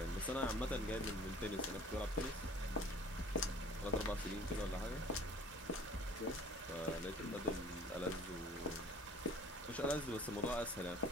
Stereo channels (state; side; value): normal; both; correlation 0.49